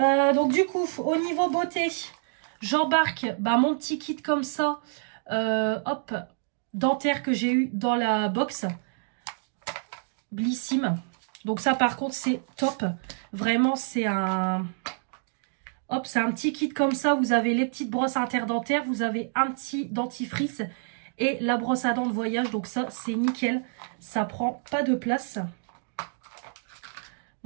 Donc du coup, au niveau beauté, j'embarque mon petit kit comme ça, hop, dentaire que j'ai eu dans la box, Blissim. Donc ça par contre c'est top, vraiment c'est un, hop, c'est un petit kit comme ça. Vous avez les petites brosses interdentaires, vous avez un petit dentifrice et la brosse à dents de voyage. Donc ça c'est nickel, ça prend pas de place.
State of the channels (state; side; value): silent; left; digital silence